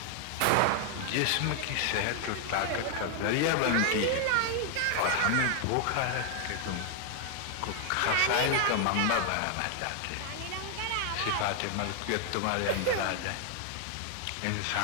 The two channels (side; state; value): both; different; correlation 0.00